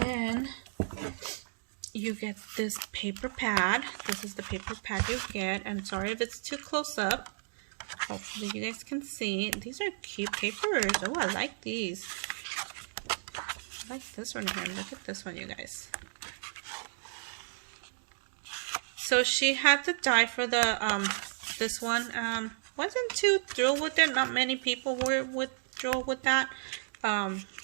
you get this paper pad. This is the paper pad you get. And sorry if it's too close up. Hopefully you guys can see. These are cute papers. Oh, I like these. I like this one here. Look at this one, you guys. So she had to die for the this one. Wasn't too thrilled with it. Not many people were thrilled with that.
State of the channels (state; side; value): silent; left; digital silence